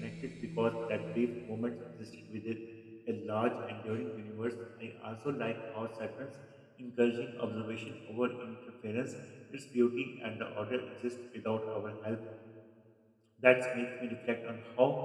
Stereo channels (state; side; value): identical; both; correlation 1.00